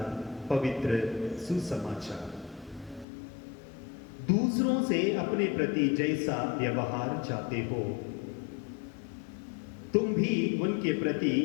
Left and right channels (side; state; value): right; drops out; at 3.1 s